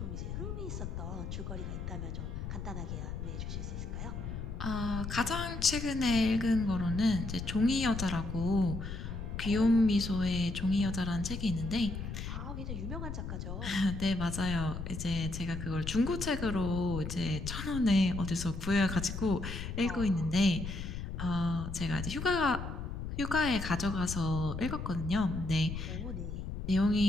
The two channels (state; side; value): noise; left; rumble, 6 dB below the sound